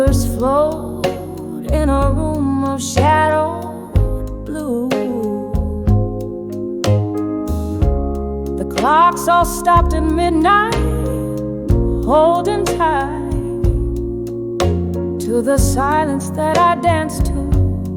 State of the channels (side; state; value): both; identical; correlation 1.00